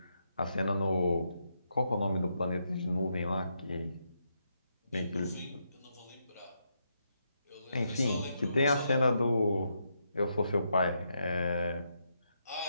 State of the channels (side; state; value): both; inverted; correlation -0.80